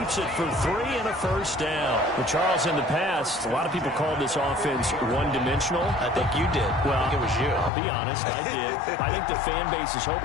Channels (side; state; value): right; drops out; at 7.7 s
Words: it for 3 and a first down. Well, Charles, in the past, a lot of people called this offense one-dimensional. I think you did. Well, I think it was you. I'll be honest, I did. I think the fan base is